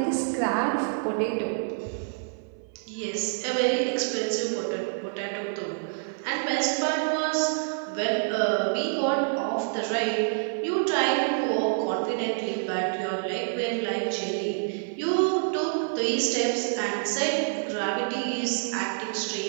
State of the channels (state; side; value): silent; left; 55 dB below the other